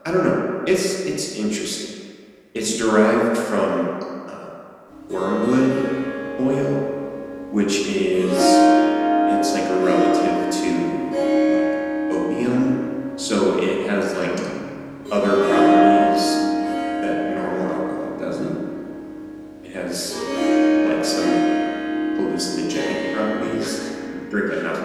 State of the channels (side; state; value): both; identical; correlation 1.00